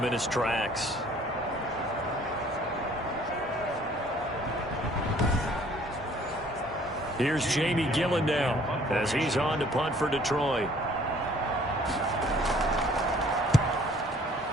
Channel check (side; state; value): both; normal; correlation 0.57